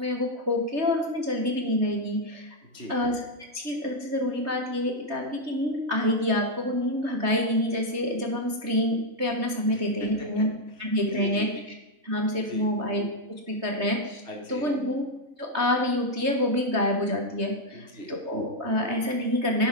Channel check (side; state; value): left; late; 3.2 ms